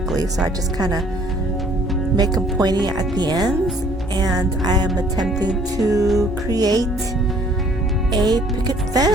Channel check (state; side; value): normal; both; correlation 0.58